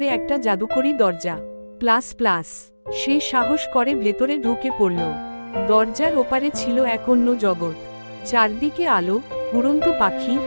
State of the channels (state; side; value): inverted; both; correlation -1.00